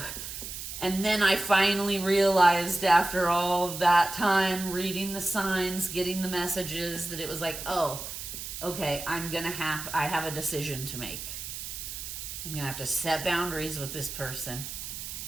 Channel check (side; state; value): right; noise; hiss, 8 dB below the sound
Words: then I finally realized after all of that time, reading the signs, getting the messages, that it was like, oh, okay, I have a decision to make. I'm going to have to set boundaries with this person